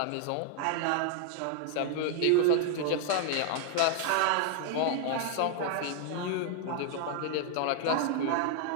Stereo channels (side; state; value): both; different; correlation 0.00